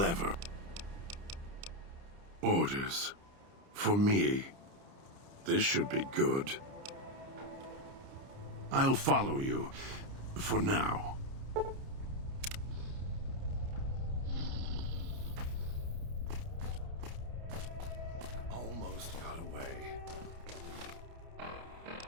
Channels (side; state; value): left; late; 30 ms